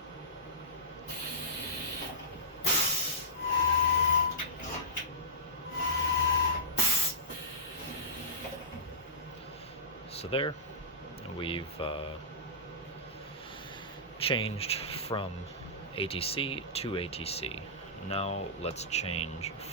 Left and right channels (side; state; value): both; normal; correlation -0.19